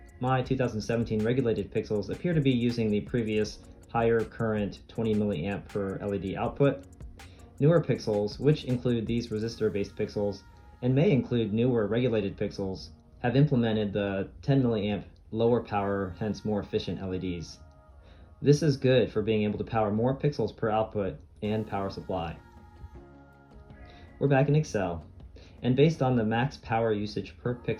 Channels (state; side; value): identical; both; correlation 1.00